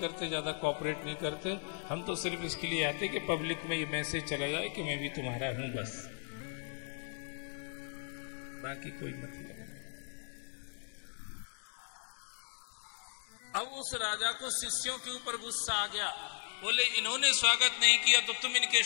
ज्यादा कोऑपरेट नहीं करते। हम तो सिर्फ इसके लिए आते कि पब्लिक में ये मैसेज चला जाए कि मैं भी तुम्हारा हूं, बस, बाकी कोई मतलब नहीं। अब उस राजा को शिष्यों के ऊपर गुस्सा आ गया। बोले इन्होंने स्वागत नहीं किया तो तुम इनके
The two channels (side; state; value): right; silent; 54 dB below the other